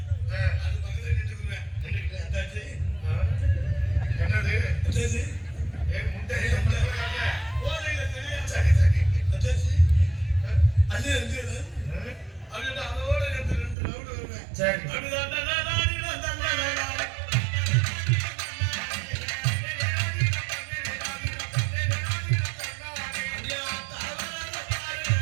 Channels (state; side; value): drops out; left; at 13.8 s